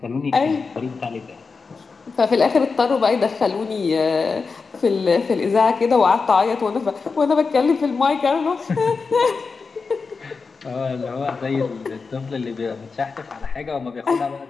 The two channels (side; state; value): right; quieter; 4.7 dB